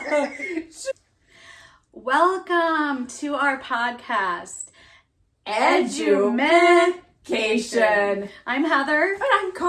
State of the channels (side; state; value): both; identical; correlation 1.00